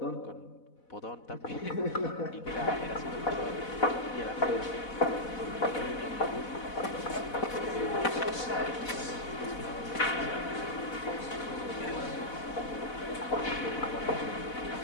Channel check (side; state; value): right; late; 4.1 ms